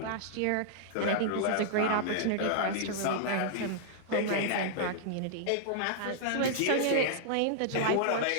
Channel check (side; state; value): both; different; correlation -0.01